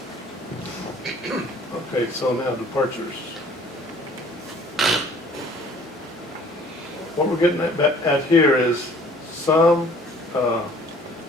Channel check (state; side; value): normal; both; correlation 0.54